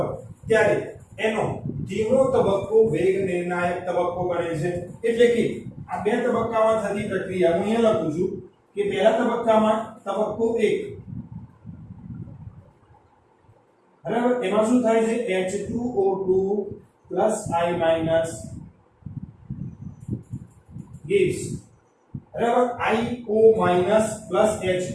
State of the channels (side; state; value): both; identical; correlation 1.00